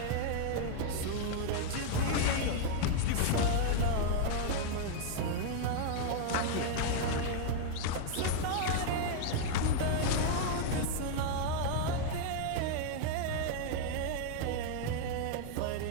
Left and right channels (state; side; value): different; both; correlation 0.00